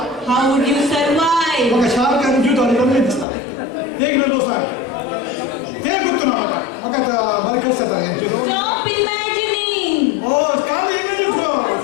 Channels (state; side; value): drops out; right; at 3.2 s